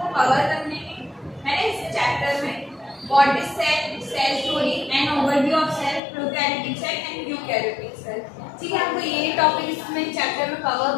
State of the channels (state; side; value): drops out; right; at 6.0 s